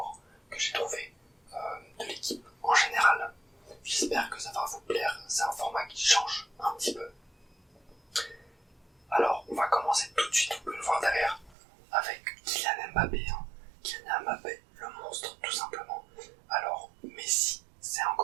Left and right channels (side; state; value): left; drops out; at 11.6 s